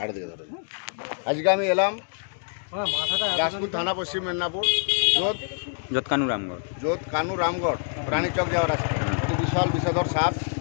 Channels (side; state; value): right; silent; 61 dB below the other